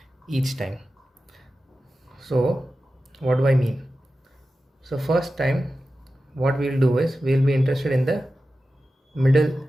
each time. So what do I mean? So first time what we'll do is we'll be interested in the middle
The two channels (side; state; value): both; normal; correlation 0.93